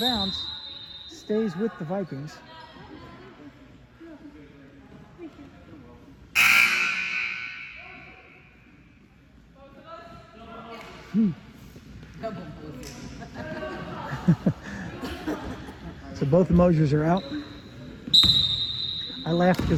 Stays with the Vikings. So both the Mosers are out. I laughed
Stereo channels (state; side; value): identical; both; correlation 1.00